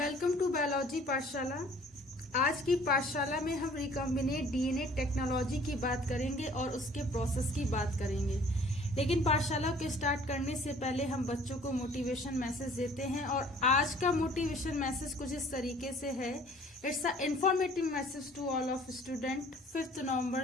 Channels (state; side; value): normal; both; correlation 0.53